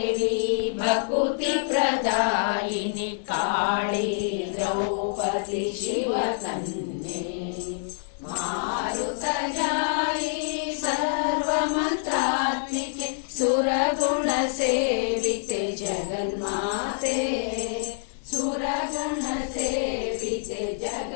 ಭಕುತಿ ಪ್ರದಾಯಿನಿ ಕಾಳಿ ದ್ರೌಪದಿ ಶಿವಕನ್ಯೆ ಮಾರುತಜಾಯಿ ಸರ್ವಮಂತ್ರಾತ್ಮಿಕೆ ಸುರಗುಣ ಸೇವಿತೆ ಜಗನ್ಮಾತೆ ಸುರಗುಣ ಸೇವಿತೆ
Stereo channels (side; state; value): right; silent; digital silence